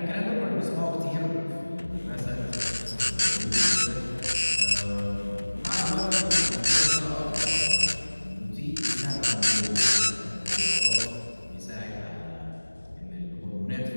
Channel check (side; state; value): both; inverted; correlation -1.00